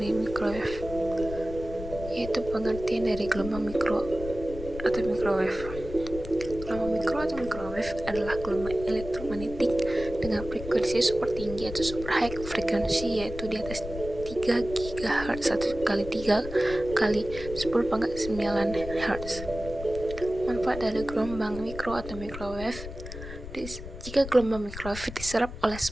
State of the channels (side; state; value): left; noise; rumble, 11 dB below the sound